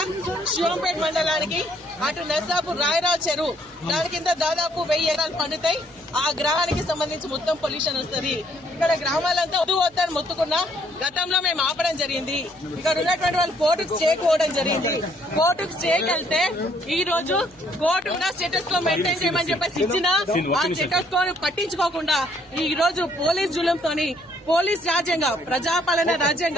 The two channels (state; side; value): noise; right; hum, 29 dB below the sound